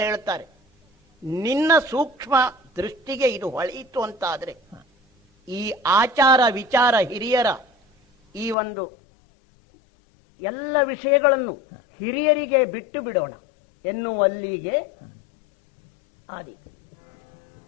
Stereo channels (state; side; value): drops out; right; at 8.6 s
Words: ಹೇಳ್ತಾರೆ. ನಿನ್ನ ಸೂಕ್ಷ್ಮ ದೃಷ್ಟಿಗೆ ಇದು ಹೊಳೆಯಿತು ಅಂತಾದ್ರೆ ಈ ಆಚಾರ ವಿಚಾರ ಹಿರಿಯರ ಈ ಒಂದು ಎಲ್ಲ ವಿಷಯಗಳನ್ನು ಹಿರಿಯರಿಗೆ ಬಿಟ್ಟು ಬಿಡೋಣ ಎನ್ನುವಲ್ಲಿಗೆ ಆದೀತು.